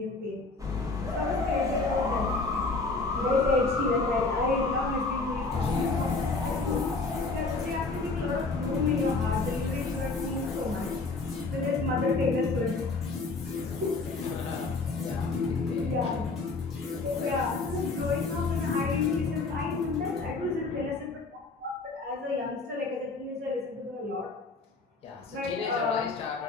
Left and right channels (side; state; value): right; quieter; 3.7 dB